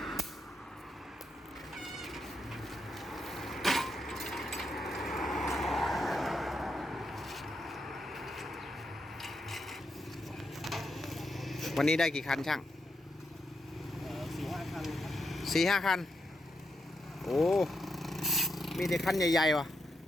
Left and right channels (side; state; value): both; normal; correlation 0.82